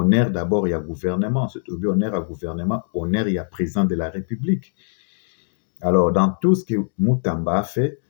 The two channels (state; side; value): silent; right; digital silence